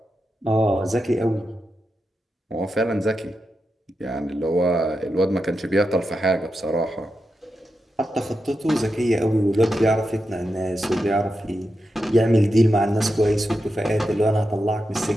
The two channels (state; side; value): normal; both; correlation 0.88